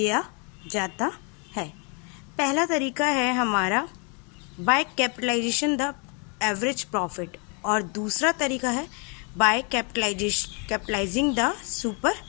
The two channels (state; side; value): quieter; right; 35.8 dB